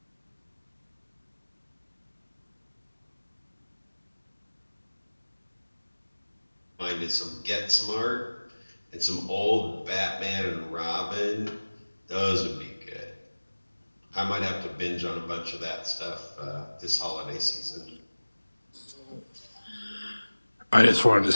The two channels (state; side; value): inverted; both; correlation -1.00